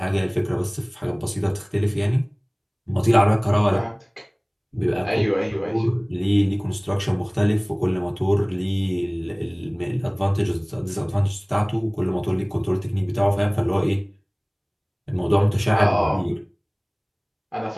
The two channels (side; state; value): both; identical; correlation 1.00